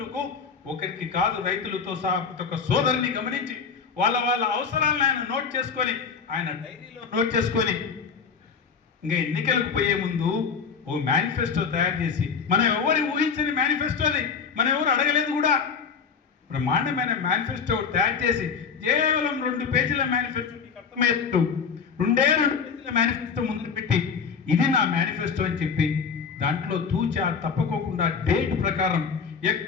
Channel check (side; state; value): right; quieter; 6.0 dB